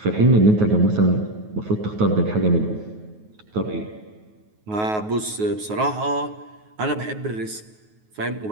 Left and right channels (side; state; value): left; late; 9.4 ms